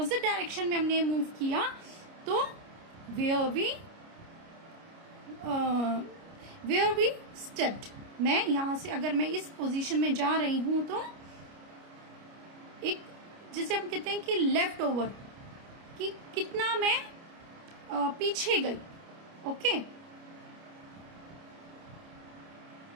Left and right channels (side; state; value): left; late; 29 ms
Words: डायरेक्शन में हमने मूव किया तो वेयर वी स्टेप्ड। मैं यहां से अगर मैं इस पोजीशन में जा रही हूं तो एक, जिसे हम कहते हैं कि लेफ्ट ओवर, कि कितना मैं पीछे गई, ओके।